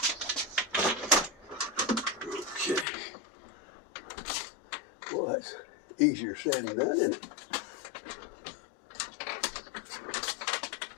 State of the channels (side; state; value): right; drops out; at 2.9 s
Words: Okay. Well, that's easier said than done, isn't it?